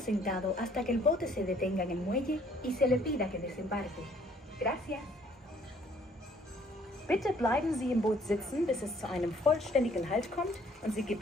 sentado hasta que el bote se detenga en el muelle y se le pida que desembarque. Gracias. Bitte bleiben Sie im Boot sitzen, bis es zu einem vollständigen Halt kommt und Sie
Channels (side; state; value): both; normal; correlation 0.61